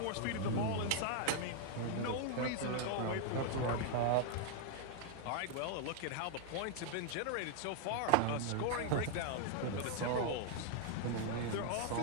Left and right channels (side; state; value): both; different; correlation 0.00